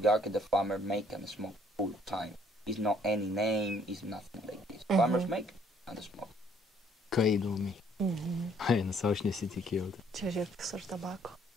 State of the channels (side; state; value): both; normal; correlation 0.63